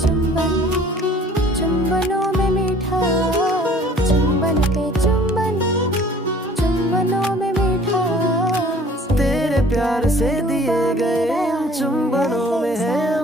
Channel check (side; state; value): both; normal; correlation 0.52